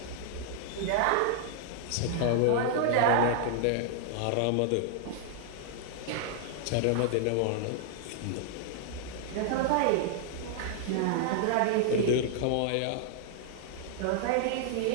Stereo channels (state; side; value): different; both; correlation 0.00